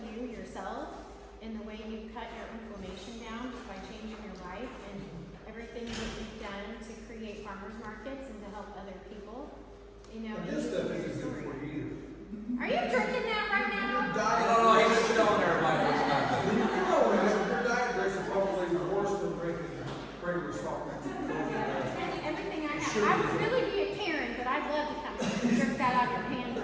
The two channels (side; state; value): both; identical; correlation 1.00